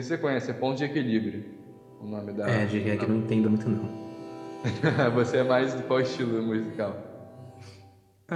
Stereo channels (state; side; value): identical; both; correlation 1.00